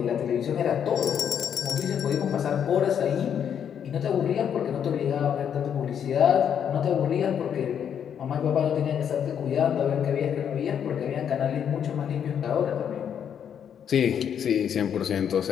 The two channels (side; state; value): right; quieter; 8.5 dB